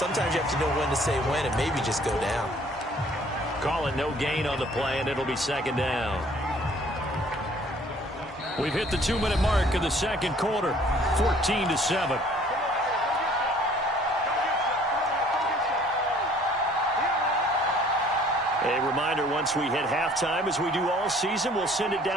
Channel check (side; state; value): both; normal; correlation 0.56